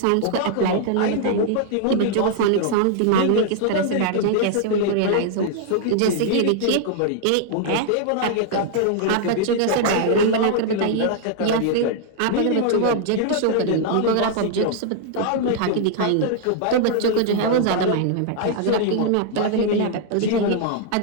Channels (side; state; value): both; different; correlation -0.01